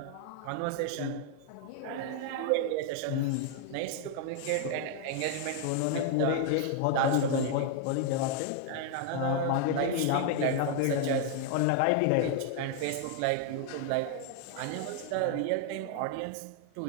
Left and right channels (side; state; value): both; different; correlation 0.00